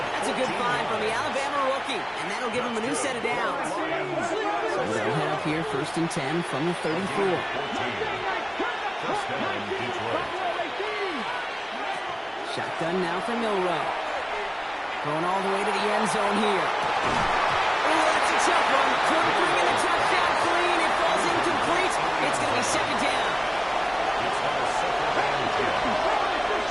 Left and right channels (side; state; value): both; identical; correlation 1.00